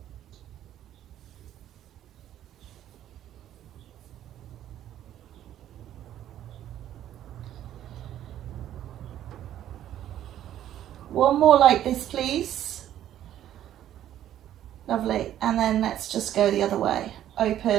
One more like this, please. Lovely. And then let's just go the other way.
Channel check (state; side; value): quieter; left; 11.7 dB